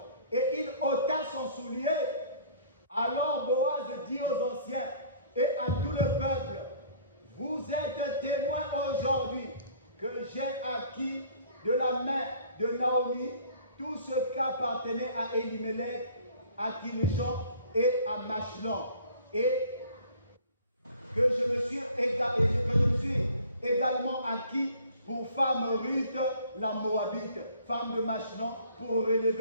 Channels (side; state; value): both; inverted; correlation -0.52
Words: Et il ôta son soulier. Alors Boaz dit aux anciens et à tout le peuple, vous êtes témoins aujourd'hui que j'ai acquis de la main de Naomi tout ce qu'appartenait à Elimelech, à Kilishon et à Machlon, et que je me suis également acquis pour femme Ruth la Moabite, femme de Machlon, pour